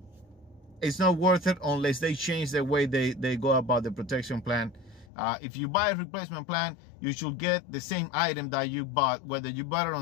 It's not worth it unless they change the way they go about the protection plan. If you buy a replacement plan, you should get the same item that you bought. Whether you bought it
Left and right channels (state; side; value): drops out; right; at 5.1 s